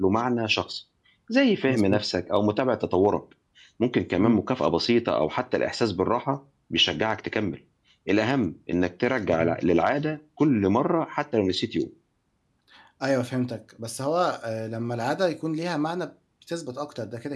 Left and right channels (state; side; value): identical; both; correlation 1.00